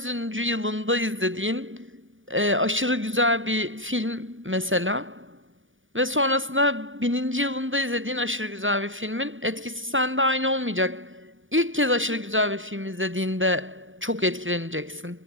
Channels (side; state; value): left; late; 0.57 ms